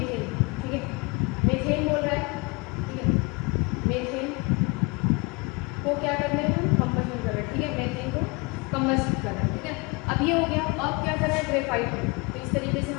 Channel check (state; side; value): quieter; right; 28.3 dB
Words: ठीक है, मीथेन बोल रहा है। ठीक है, मीथेन को क्या करना है, हम कंबशन कर रहे हैं। ठीक है, मीथेन को कंबशन कर रहे हैं। ठीक है, अब ये हो गया। अब क्या कर रहा है, ग्रेफाइट में, तो इस तरीके से